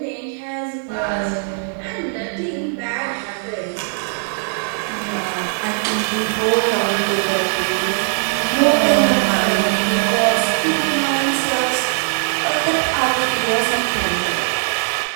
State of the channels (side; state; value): left; silent; 66 dB below the other